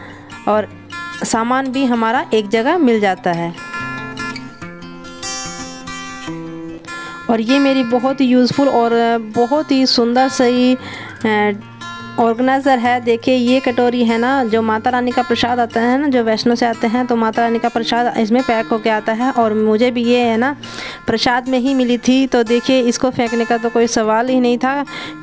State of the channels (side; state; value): both; identical; correlation 1.00